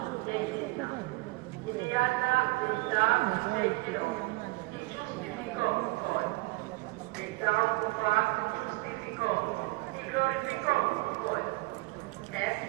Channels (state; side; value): quieter; left; 23.7 dB